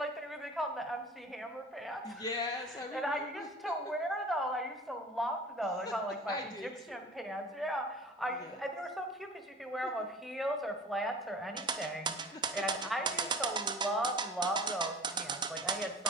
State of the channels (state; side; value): normal; both; correlation 0.42